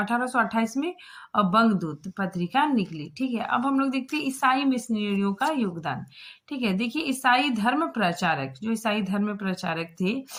में बंगदूत पत्रिका निकली। ठीक है, अब हम लोग देखते हैं ईसाई मिशनरियों का योगदान। ठीक है, देखिए ईसाई धर्म प्रचारक, जो ईसाई धर्म प्रचारक थे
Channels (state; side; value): identical; both; correlation 1.00